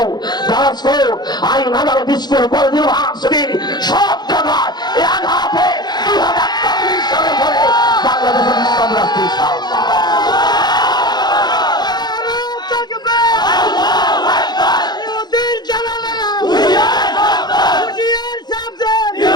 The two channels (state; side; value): late; right; 0.20 ms